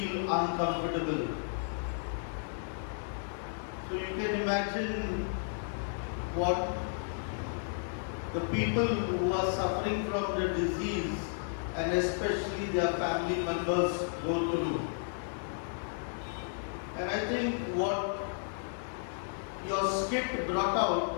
uncomfortable. So you can imagine what the people who are suffering from the disease and especially their family members go through. And I think what your skit brought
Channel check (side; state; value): right; silent; digital silence